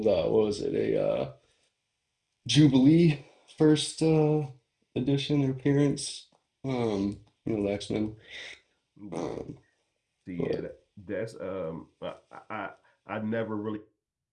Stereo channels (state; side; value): identical; both; correlation 1.00